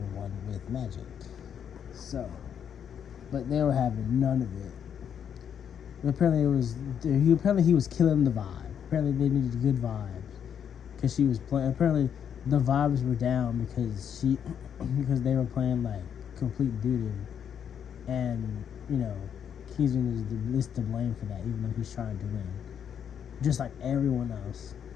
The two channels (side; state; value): right; quieter; 8.3 dB